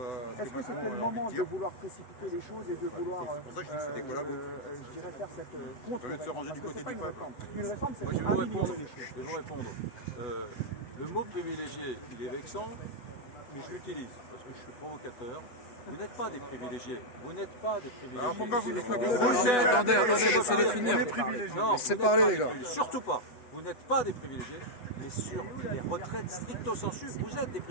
Est-ce que c'était le moment de vouloir précipiter les choses et de vouloir, je dirais, faire cette contre-réforme? Parce que c'est pas une réforme. Une réforme, c'est pour améliorer les choses. Je vais vous répondre. Le mot privilégié, il est vexant, mais je l'utilise parce que je suis provocateur. Vous n'êtes pas des privilégiés. Vous n'êtes pas des privilégiés. Alors pourquoi vous dites ça? Attendez, laissez-les finir. Non, laissez parler les gars. Surtout pas. Vous n'êtes pas des privilégiés, mais sur les retraites stricto sensu, vous êtes des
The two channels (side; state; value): right; late; 8.1 ms